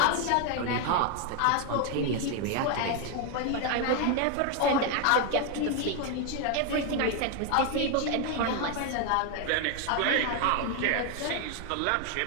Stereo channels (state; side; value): different; both; correlation 0.01